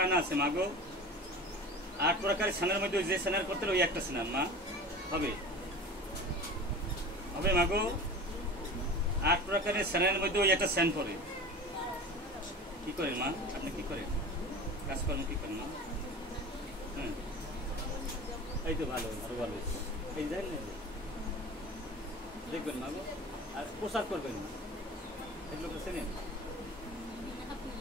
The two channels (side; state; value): both; normal; correlation 0.35